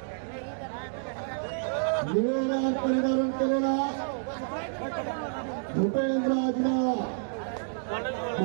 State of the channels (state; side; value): silent; left; digital silence